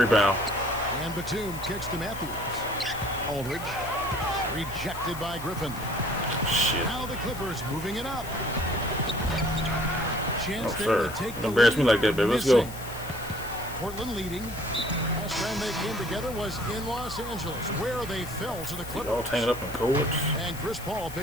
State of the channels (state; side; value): noise; left; hiss, 15 dB below the sound